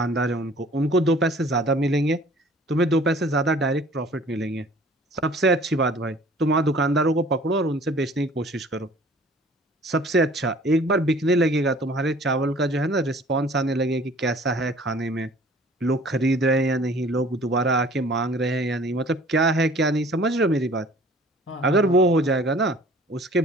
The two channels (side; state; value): both; normal; correlation 0.51